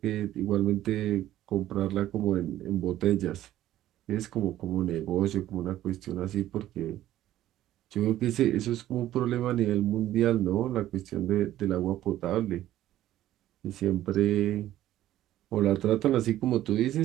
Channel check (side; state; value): left; quieter; 13.5 dB